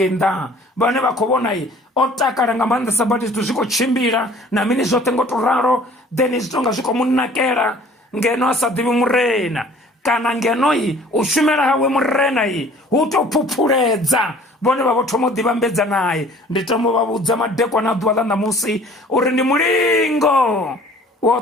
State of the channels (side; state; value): both; normal; correlation 0.51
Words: nnḓa, vhane vha khou vhona o takala nga maanḓesa badi zwithu zwi khou tshimbila na mini zwoṱhe ngo to ralo, then zwi tonga zwi khou mu nakela ngeno a sa ḓivhi murena, kana ngeno u shumela hawe murena hu tou phuphuledza, vhone vha vho thoma u ḓivhambedza naye. Ndi tama u vha vhudza madekwana a ḓuvha ḽa ṋamusi uri ndi mulingo wo